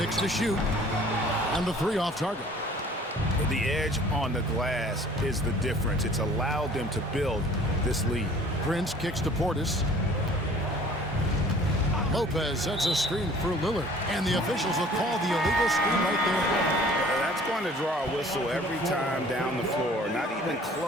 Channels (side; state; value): both; normal; correlation 0.51